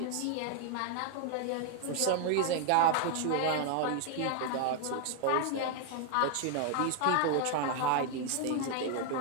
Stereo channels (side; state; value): both; different; correlation 0.00